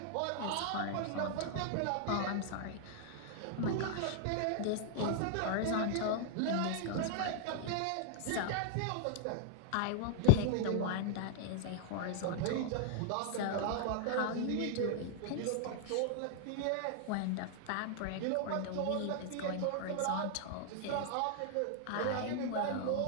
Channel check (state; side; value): different; both; correlation -0.01